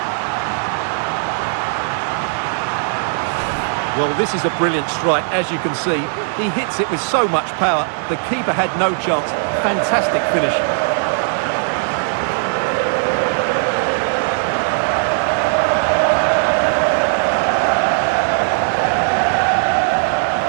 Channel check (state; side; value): silent; left; digital silence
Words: Well, this is a brilliant strike, as you can see. He hits it with so much power. The keeper had no chance. Fantastic finish.